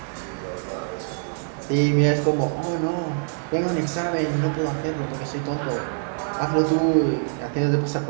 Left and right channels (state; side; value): silent; left; 61 dB below the other